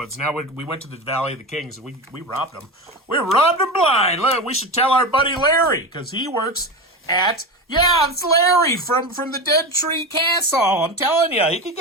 Now we went to the Valley of the Kings, and we robbed them. We robbed them blind. Look, we should tell our buddy Larry, because he works at... Yeah, it's Larry from the Dead Tree Castle. I'm telling you, he can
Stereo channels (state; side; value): normal; both; correlation 0.23